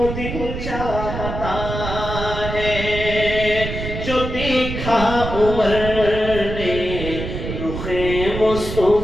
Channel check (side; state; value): right; noise; rumble, 6 dB below the sound